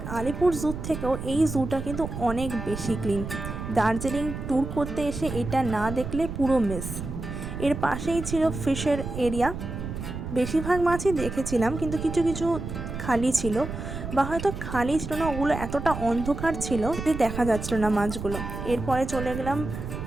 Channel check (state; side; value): noise; right; rumble, 7 dB below the sound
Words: আলিপুর জু থেকেও এই জুটা কিন্তু অনেক বেশি ক্লিন। দার্জিলিং ট্যুর করতে এসে এটা না দেখলে পুরো মিস। এর পাশেই ছিল ফিশের এরিয়া। বেশিরভাগ মাছই দেখেছিলাম, কিন্তু কিছু কিছু খালি ছিল, বা হয়তো খালি ছিল না, ওগুলো এতটা অন্ধকার ছিল যে দেখা যাচ্ছিল না মাছগুলো। এরপরে চলে গেলাম